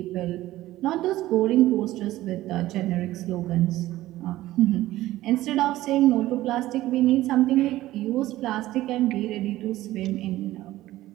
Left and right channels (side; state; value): left; quieter; 15.8 dB